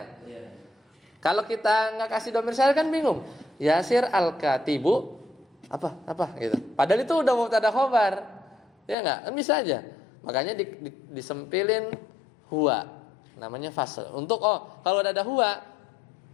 Kalau kita nggak kasih domir sya'an kan bingung. Yasir al-katibu apa gitu. Padahal itu udah mubtada khobar. Ya enggak? Kan bisa aja. Makanya disempilin huwa. Namanya fasl. Untuk kalau ada huwa,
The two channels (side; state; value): right; drops out; at 9.0 s